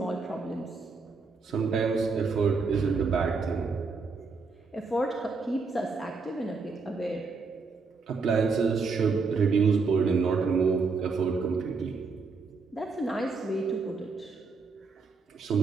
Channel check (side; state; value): left; quieter; 4.5 dB